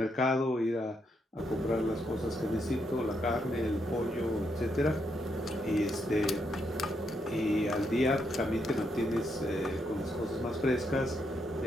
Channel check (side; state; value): both; normal; correlation 0.79